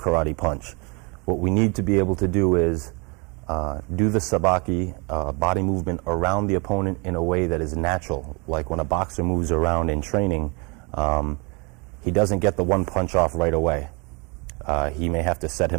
punch. What we need to be able to do is do the sabaki body movement around the opponent in a way that is natural. Like when a boxer moves around in training, he doesn't get the one punch off right away. He may have to set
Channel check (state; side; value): quieter; left; 30.8 dB